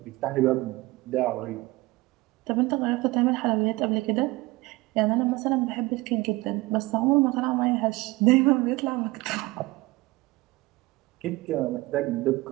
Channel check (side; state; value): left; quieter; 21.0 dB